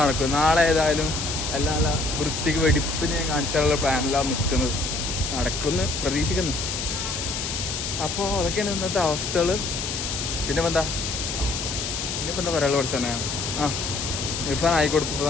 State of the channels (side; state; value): left; noise; hiss, 4 dB below the sound